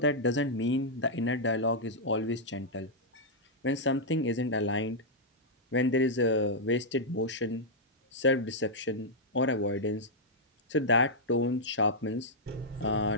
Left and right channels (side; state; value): both; normal; correlation -0.07